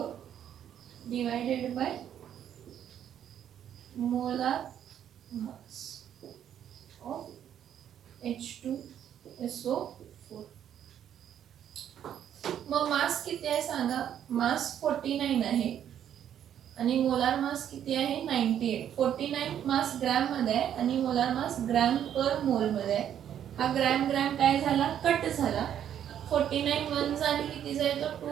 divided by molar mass of H2SO4. मग मास किती आहे सांगा, मास 49 आहे आणि मोलार मास किती आहे, 98. 49 मास ग्रॅम मध्ये आहे आणि मोलार मास ग्रॅम पर मोल मध्ये आहे. हा ग्रॅम ग्रॅम काय झाला, कट झाला. 49 1 जा आणि किती जाईल तर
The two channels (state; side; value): quieter; left; 9.8 dB